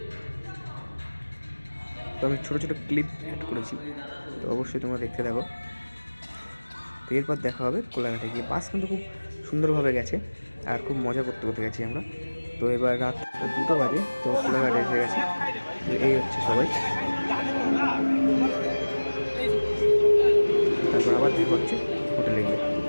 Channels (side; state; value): both; inverted; correlation -1.00